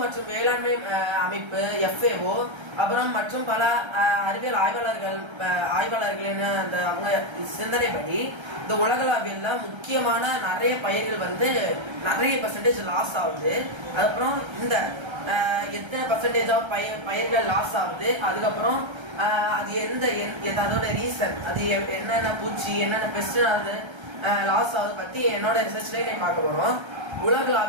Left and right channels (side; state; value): left; late; 1.3 ms